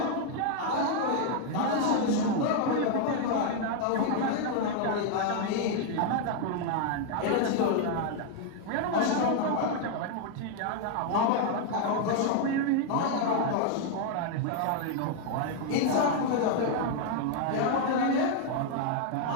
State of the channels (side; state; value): both; different; correlation 0.00